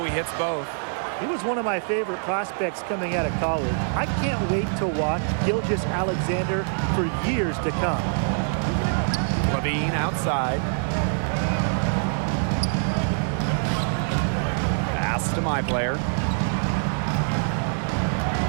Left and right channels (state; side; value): silent; left; digital silence